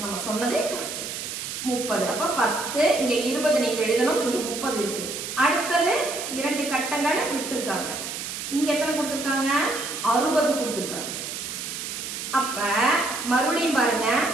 நம்ம சொன்னதே கரெக்ட். 30. அப்ப 10, இங்க 20 நீங்க எழுதணும். இங்க 30 இருக்கு. அடுத்தது 2 கட்டங்கள் விட்டுருக்காங்க. இங்க எத்தனை கொடுத்திருக்காங்க? 60 கொடுத்திருக்காங்க. அப்ப மறுபடியும் பாருங்க,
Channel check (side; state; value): right; noise; hiss, 6 dB below the sound